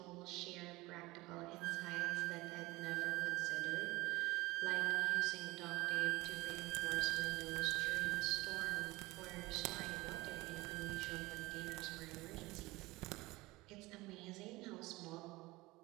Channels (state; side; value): quieter; left; 20.7 dB